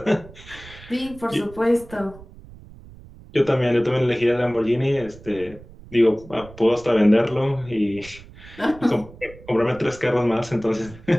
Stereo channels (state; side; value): noise; right; rumble, 19 dB below the sound